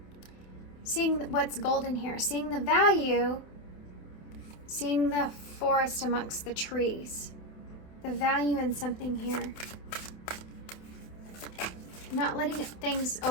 what's golden here, seeing the value, seeing the forest amongst the trees, the value in something here. Not letting things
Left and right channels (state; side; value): late; right; 28 ms